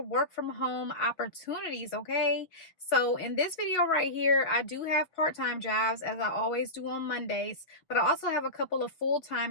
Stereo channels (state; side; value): late; right; 6.0 ms